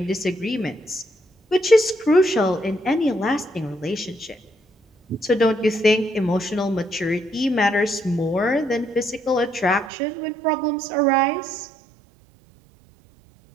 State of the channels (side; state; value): left; drops out; at 9.9 s